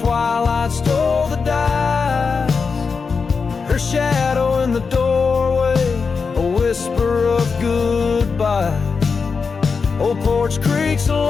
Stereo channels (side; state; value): right; quieter; 5.1 dB